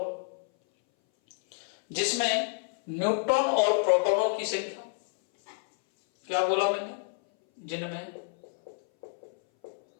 जिसमें न्यूट्रॉन और प्रोटॉनों की संख्या, क्या बोला मैंने, जिनमें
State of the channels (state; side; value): silent; right; 59 dB below the other